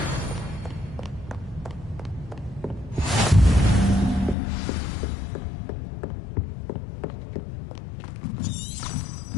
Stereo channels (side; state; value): right; drops out; at 4.4 s